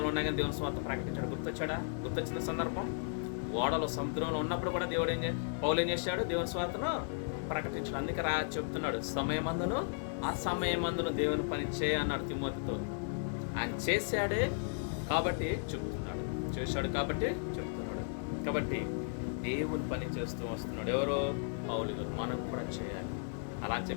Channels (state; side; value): silent; right; digital silence